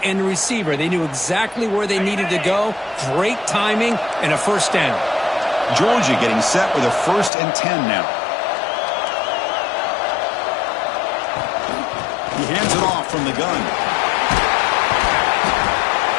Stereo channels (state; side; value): drops out; right; at 7.3 s